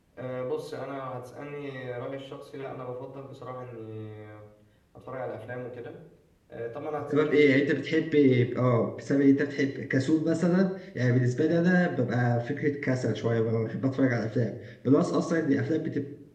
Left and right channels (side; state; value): both; identical; correlation 1.00